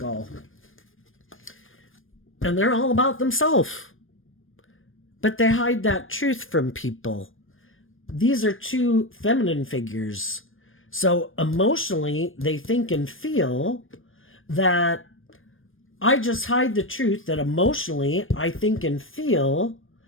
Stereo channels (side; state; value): right; late; 0.59 ms